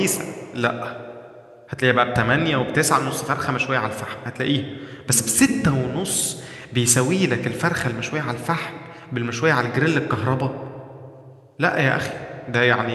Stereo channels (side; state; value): both; identical; correlation 1.00